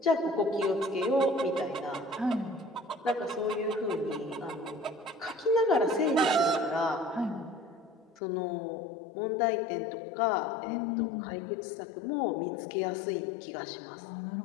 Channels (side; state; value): right; drops out; at 8.2 s